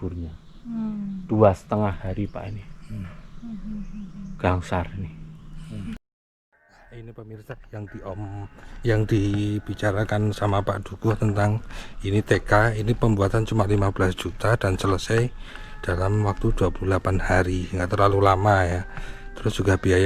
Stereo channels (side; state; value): both; identical; correlation 1.00